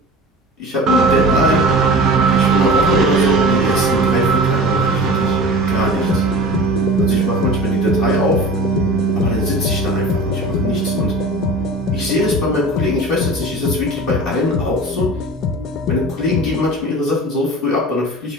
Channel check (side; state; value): both; normal; correlation 0.36